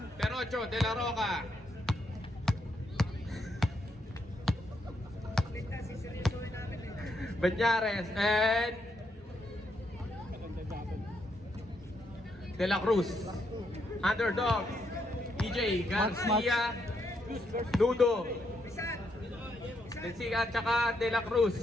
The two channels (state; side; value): normal; both; correlation 0.77